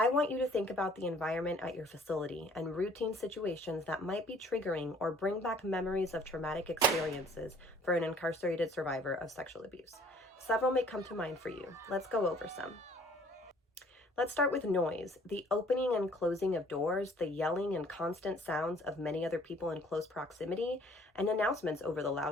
want you to think about the environment at your facility and routine situations that might be triggering or bring back memories of traumatic experiences for an incarcerated survivor of sexual abuse. Several may come to mind for you. Let's go over some. Let's start with noise. The opening and closing of doors, the yelling and constant sounds of many other people in close proximity, and announcements over the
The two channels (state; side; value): normal; both; correlation 0.56